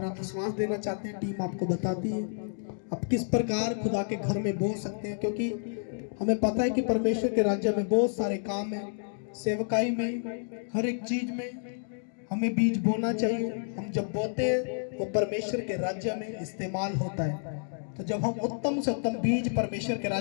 विश्वास देना चाहते हैं, टीम आपको बताती है आप किस प्रकार खुदा के घर में बो सकते हैं, क्योंकि हमें पता है कि परमेश्वर के राज्य में बहुत सारे काम है। सेवकाई में, हर एक चीज में हमें बीज बोना चाहिए। हम जब बोते हैं वो परमेश्वर के राज्य में इस्तेमाल होता है। तो जब हम उत्तम से उत्तम बीज परमेश्वर के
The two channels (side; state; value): right; silent; digital silence